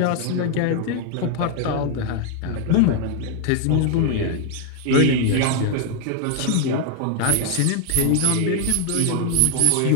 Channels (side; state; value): both; different; correlation 0.00